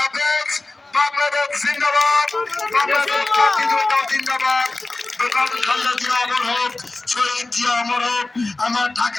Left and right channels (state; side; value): quieter; right; 3.1 dB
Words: হাফেজ। বাংলাদেশ জিন্দাবাদ, বাংলাদেশ জাতীয়তাবাদী জিন্দাবাদ। বেগম খালেদা জিয়া অমর হোক, শহীদ জিয়া অমর হোক। আমার